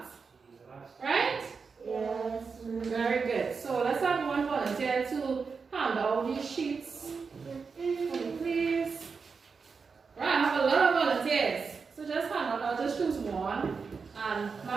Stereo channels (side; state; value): left; quieter; 5.2 dB